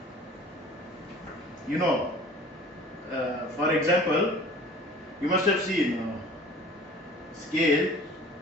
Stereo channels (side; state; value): both; normal; correlation 0.46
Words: you know, for example, you must have seen scale